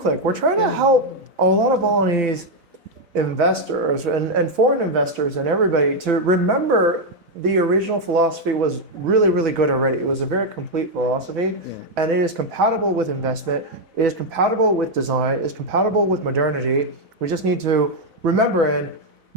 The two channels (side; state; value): left; late; 4.0 ms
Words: We're trying to help a lot of Balinese investors and foreign investors and everybody to remember the original philosophy was really, really good already. It was a very complete philosophy, and it is compatible with investment. It is compatible with design. It is compatible with modernity. We just need to remember and